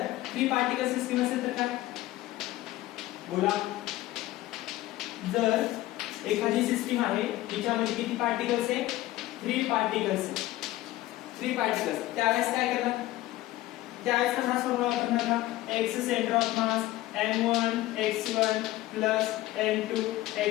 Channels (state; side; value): quieter; right; 16.4 dB